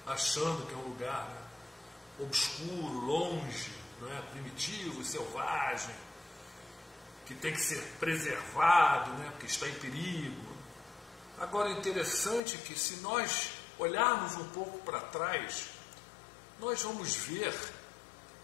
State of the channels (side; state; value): right; drops out; at 12.4 s